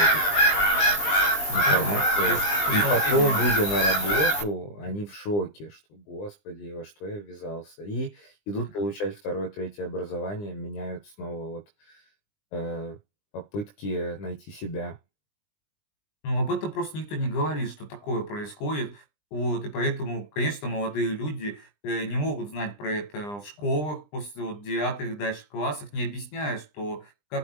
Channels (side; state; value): right; late; 20 ms